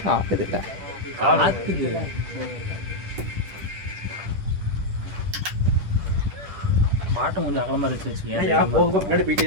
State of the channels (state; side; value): late; left; 10 ms